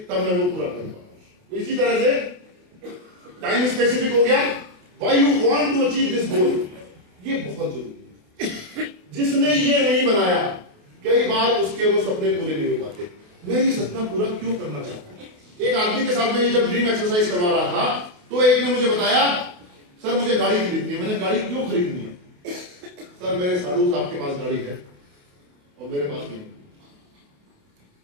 तब मैं वो पूरा कर पाऊंगा। तो इसी तरह से टाइम स्पेसिफिक हो गया, why you want to achieve this goal, ये बहुत जरूरी है। जिसने ये नहीं बनाया, कई बार उसके वो सपने पूरे नहीं हो पाते। मैं ये सपना पूरा क्यों करना चाहता हूं? एक आदमी के साथ में जब ड्रीम एक्सरसाइज करवा रहा था, तो एक ने मुझे बताया, सर मुझे गाड़ी खरीदनी है। मैंने गाड़ी क्यों खरीदनी है? सर मेरे साधु साहब के पास गाड़ी है और मेरे पास नहीं।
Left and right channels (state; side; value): late; left; 28 ms